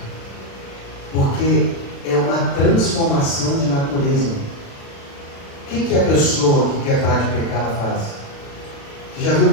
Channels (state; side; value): late; right; 36 ms